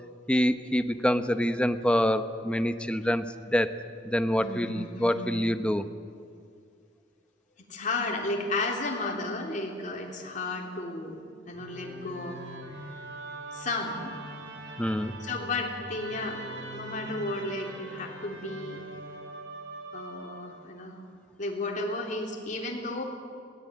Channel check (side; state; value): both; normal; correlation 0.67